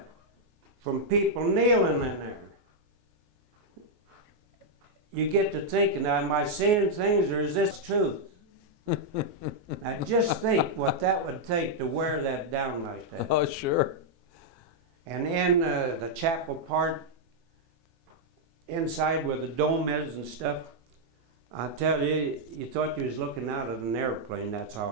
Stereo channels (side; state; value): left; late; 18 ms